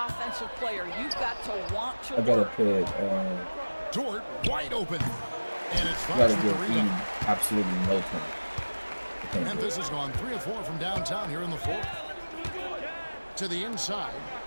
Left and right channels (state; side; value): inverted; both; correlation -1.00